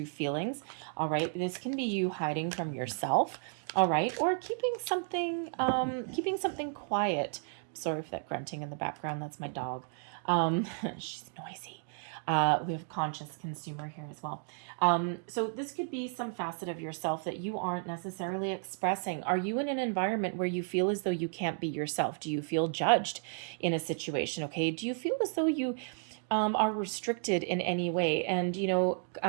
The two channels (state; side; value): silent; left; 56 dB below the other